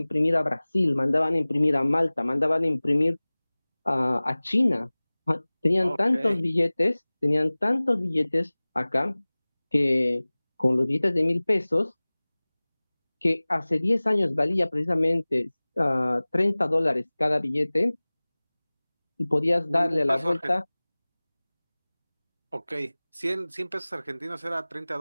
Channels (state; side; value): inverted; both; correlation -1.00